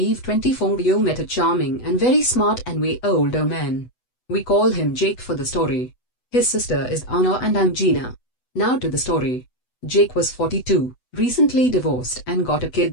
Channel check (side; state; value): right; late; 8.0 ms